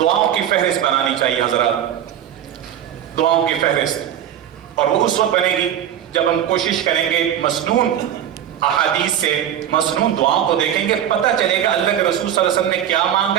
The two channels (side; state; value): left; quieter; 10.3 dB